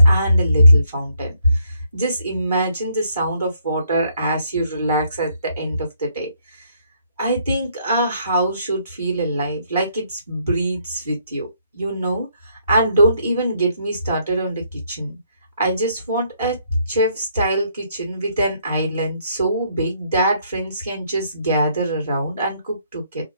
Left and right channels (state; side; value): inverted; both; correlation -0.70